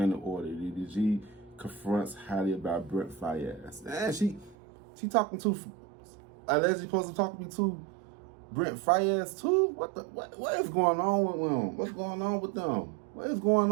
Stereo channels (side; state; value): left; drops out; at 4.5 s